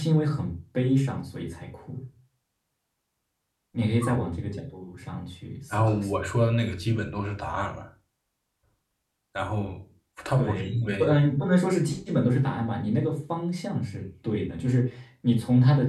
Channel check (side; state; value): both; identical; correlation 1.00